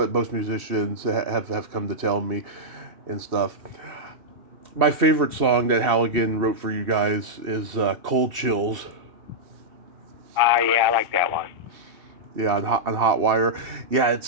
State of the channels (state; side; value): late; left; 2.7 ms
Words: most musicians have come to tell me and stuff. My favorite song that Halligan wrote for you guys is Cold Chills. Yeah, I like that one. Yeah, on Hot Wire. Yeah, it's